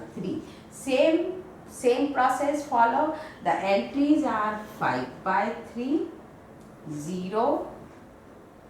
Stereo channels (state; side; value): identical; both; correlation 1.00